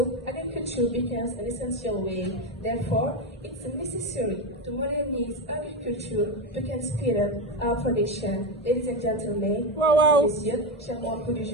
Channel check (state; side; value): normal; both; correlation 0.14